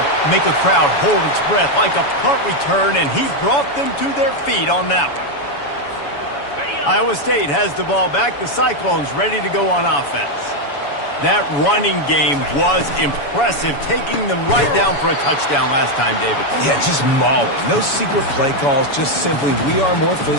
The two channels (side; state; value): right; late; 7.0 ms